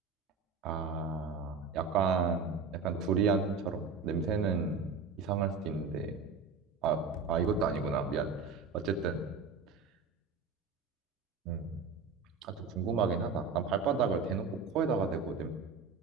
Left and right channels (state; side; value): quieter; left; 4.9 dB